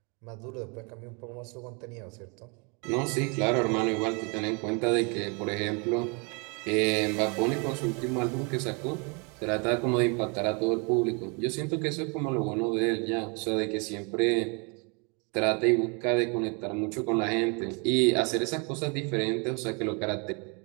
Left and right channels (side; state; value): left; quieter; 33.2 dB